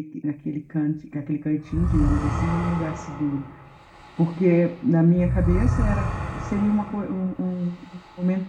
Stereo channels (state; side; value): identical; both; correlation 1.00